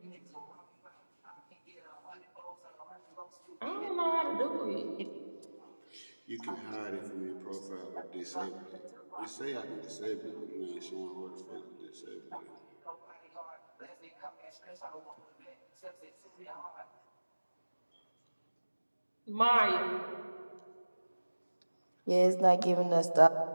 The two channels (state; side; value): inverted; both; correlation -1.00